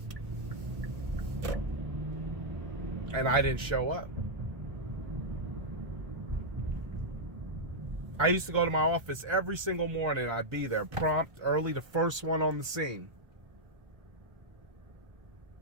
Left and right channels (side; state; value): left; late; 1.3 ms